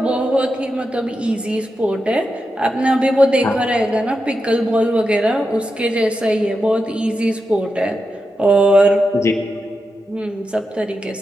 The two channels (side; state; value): both; normal; correlation 0.88